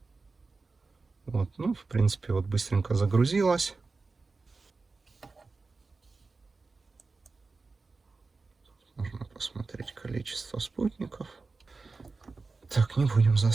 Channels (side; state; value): left; quieter; 4.0 dB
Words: Вот, ну, в принципе, вот быстренько загрузилась. Можно посмотреть количество спутников. Так, не будем